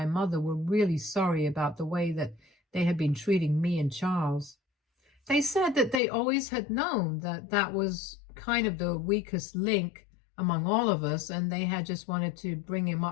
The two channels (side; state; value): right; drops out; at 6.0 s